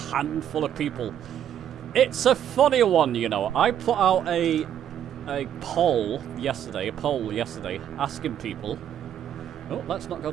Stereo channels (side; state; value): left; quieter; 10.0 dB